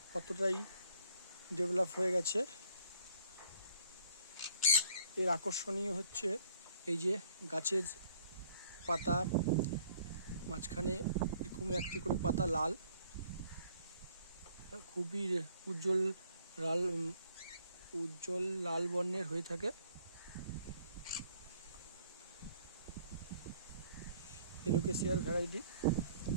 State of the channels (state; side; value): inverted; both; correlation -0.60